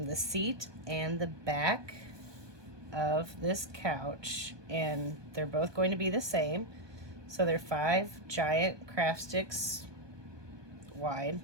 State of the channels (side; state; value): left; late; 1.2 ms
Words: seat and the back of this couch, and they're both going to be the same. So they're 5 giant craft sticks wide,